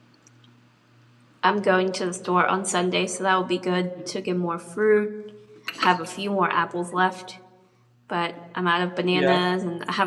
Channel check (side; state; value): both; identical; correlation 1.00